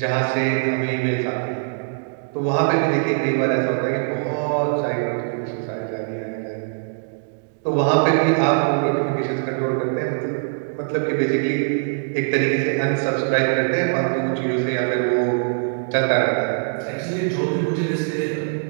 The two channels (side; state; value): left; silent; digital silence